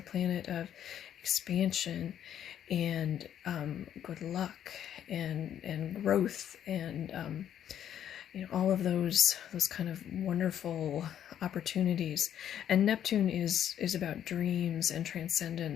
planet of expansion and good luck and growth and all of those kind of wonderful opportunities. And Neptune is about dreams and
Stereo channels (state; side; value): quieter; right; 10.1 dB